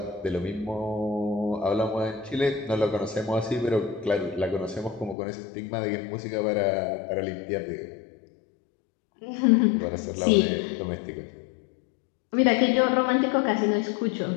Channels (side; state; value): right; drops out; at 5.2 s